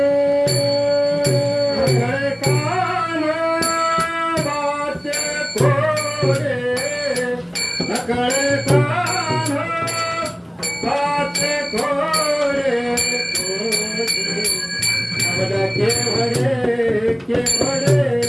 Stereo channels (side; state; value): both; identical; correlation 1.00